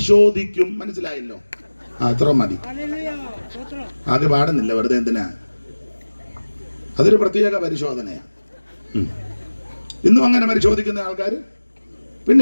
മനസ്സിലായല്ലോ? അത്ര മതി. അത് പാടുന്നില്ല, വെറുതെ എന്തിനാ? അതൊരു പ്രത്യേക പരിശോധനയാ. ഇന്നും അങ്ങനെ പരിശോധിക്കുന്ന ആൾക്കാർ.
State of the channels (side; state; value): both; inverted; correlation -1.00